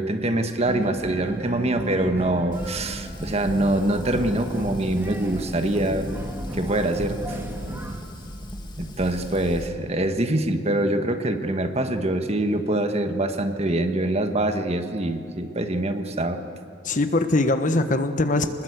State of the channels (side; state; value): both; normal; correlation 0.57